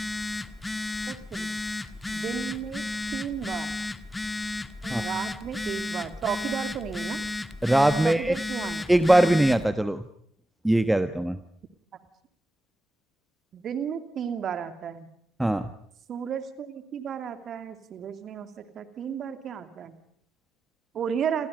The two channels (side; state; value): both; normal; correlation 0.92